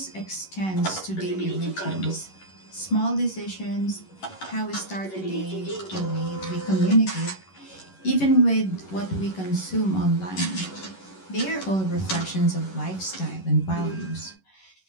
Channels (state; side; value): late; right; 11 ms